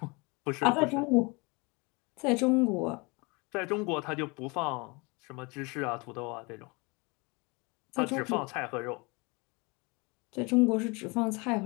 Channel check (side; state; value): right; quieter; 27.9 dB